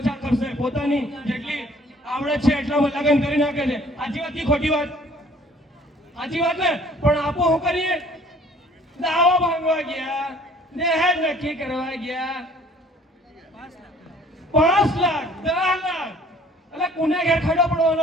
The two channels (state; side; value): normal; both; correlation 0.55